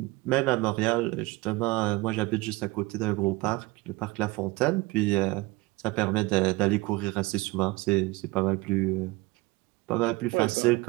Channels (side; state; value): left; quieter; 22.0 dB